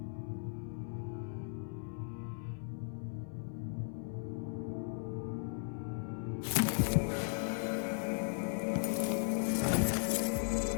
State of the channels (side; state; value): right; silent; 53 dB below the other